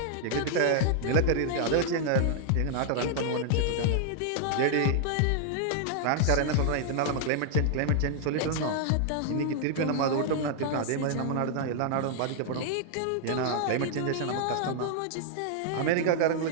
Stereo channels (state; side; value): different; both; correlation -0.01